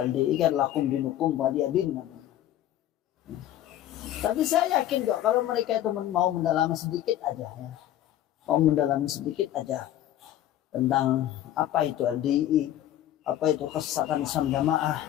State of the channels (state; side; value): quieter; right; 12.4 dB